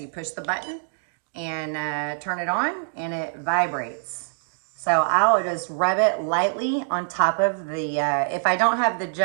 push the button and turn it on, and it vibrates. So I'll just rub it lightly on top of the, if I don't have the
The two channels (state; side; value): silent; left; digital silence